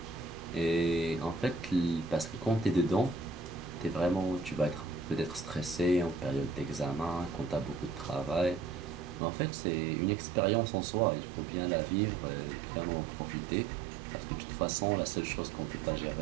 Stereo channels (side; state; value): left; drops out; at 9.2 s